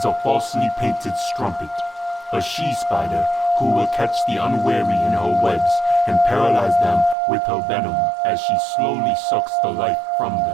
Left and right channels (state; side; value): drops out; left; at 7.2 s